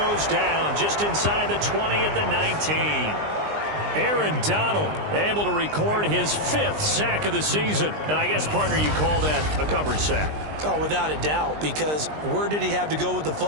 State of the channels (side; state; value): left; late; 20 ms